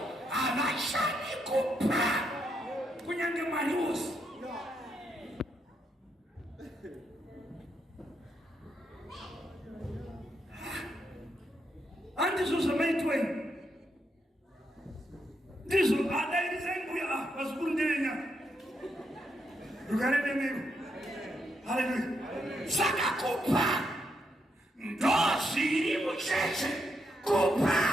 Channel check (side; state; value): both; normal; correlation 0.80